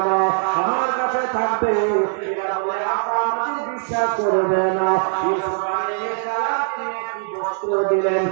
না, আমার কাছে থাকবে। এরা বলে, আব্বা আমাদের বিশ্বাস করবে না। ইউসুফ আলাইহিস সালাম তিনি একটি বস্ত্র দিলেন,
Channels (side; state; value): left; silent; digital silence